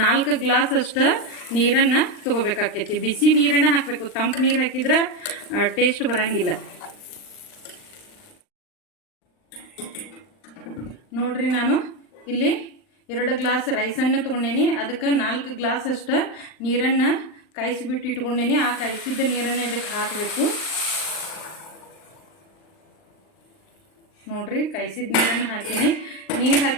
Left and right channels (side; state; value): right; late; 39 ms